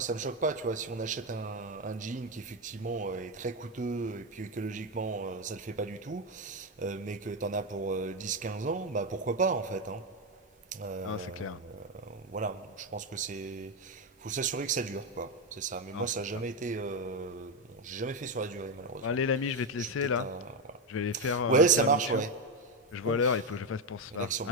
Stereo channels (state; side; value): normal; both; correlation 0.10